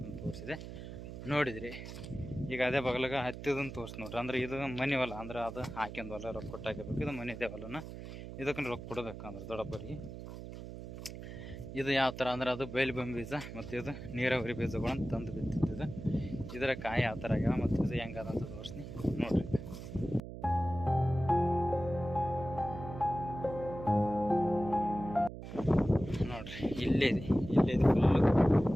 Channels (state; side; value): noise; right; hum, 10 dB below the sound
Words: ತೋರಿಸಿದೆ ನೋಡಿದ್ರಿ. ಈಗ ಅದೇ ಬಗಲಾಗ ಹತ್ತಿದನ್ನು ತೋರಿಸಿ ನೋಡ್ರಿ. ಅಂದ್ರೆ ಇದು ಮನೆ ಹೊಲ, ಅಂದ್ರೆ ಅದು ಹಾಕ್ಯಂದು ಹೊಲ ರೊಕ್ಕ ಕೊಟ್ಟು ಹಾಕಬೇಕು. ಇದು ಮನೆ ಇದೆ ಹೊಲನ, ಇದಕ್ಕೆ ರೊಕ್ಕ ಕೊಡಬೇಕು ಅಂದ್ರೆ ದೊಡ್ಡಪ್ಪರಿಗೆ. ಇದು ಯಾವ ಥರ ಅಂದ್ರೆ ಅದು ಬೈಲ್ಬಂಬಿ ಬೀಜ, ಮತ್ತು ಇದು ನೀರಾವರಿ ಬೀಜಗಳನ್ನು ತಂದು ಬಿತ್ತಿದ್ದು. ಇದರ ಕಾಯಿ ಯಾವ ಥರ ಆಗ್ಯಾವ ಮತ್ತು ಇದು ಹೆಂಗದಂತ ತೋರಿಸ್ತೀನಿ ನೋಡ್ರಿ. ನೋಡ್ರಿ ಇಲ್ಲೇ ಫುಲ್ಲು